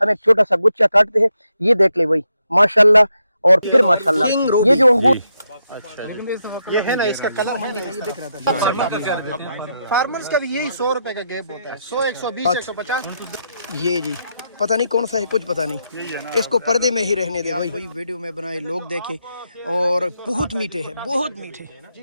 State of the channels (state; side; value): inverted; both; correlation -0.81